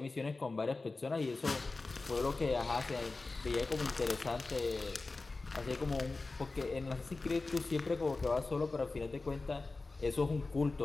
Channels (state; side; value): quieter; right; 3.5 dB